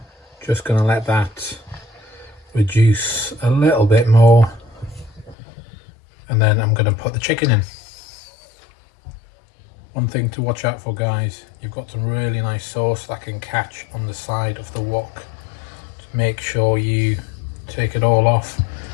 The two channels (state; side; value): drops out; right; at 5.4 s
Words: reduce a little bit more, and then I'm going to put the chicken in. One thing to watch out for, guys, you've got some really nice sauce that can catch on the side of the wok. Just make sure you take it all off.